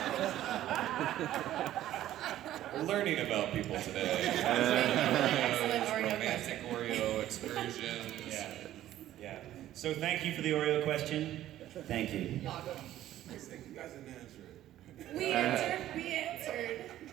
We're learning about people today. Excellent Oreo Romantic Oreo excursions. Yeah. So thank you for the Oreo question. Thank you. You guys didn't answer it. We answered.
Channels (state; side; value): quieter; left; 13.2 dB